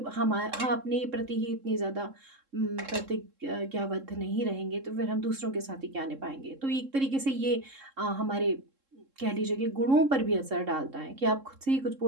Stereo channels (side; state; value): left; late; 3.7 ms